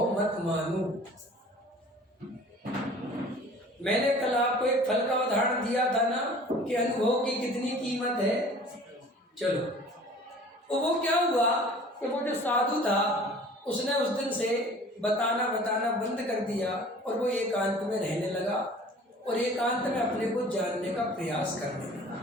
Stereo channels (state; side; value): normal; both; correlation 0.47